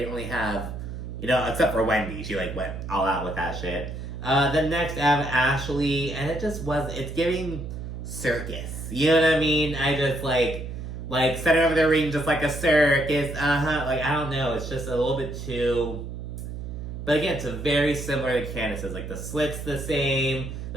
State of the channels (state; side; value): noise; right; hum, 8 dB below the sound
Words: really have, except for Wendy. She like went all out with that shit. Then next I have Ashley, and it just it's giving circus. You know what I mean? I just like center over the ring just like a circus. Like I don't know. It's just a little bit too. But again, it's very similar to Candace's. Like the slit's the same.